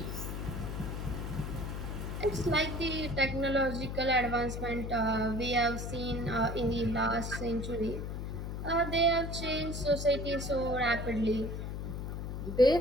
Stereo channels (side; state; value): left; noise; hum, 5 dB below the sound